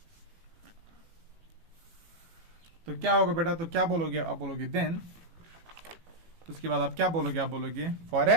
तो क्या होगा बेटा, तो क्या बोलोगे, आप बोलोगे देन, तो उसके बाद आप क्या बोलोगे, आप बोलोगे for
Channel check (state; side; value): late; left; 18 ms